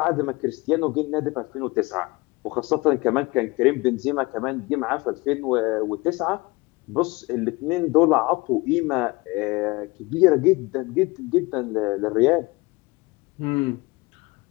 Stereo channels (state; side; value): quieter; right; 23.8 dB